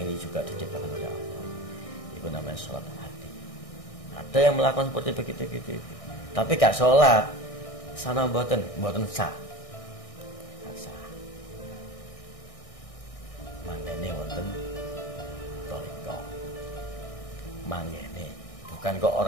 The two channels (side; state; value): right; late; 1.6 ms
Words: juga diciptakan oleh Allah. Itu namanya sholat hati. Ada yang melakukan seperti begitu, tapi gak sholat. Sana mboten sah. Gak sah. Mangene wonten toriko. Mangene. Bukan kok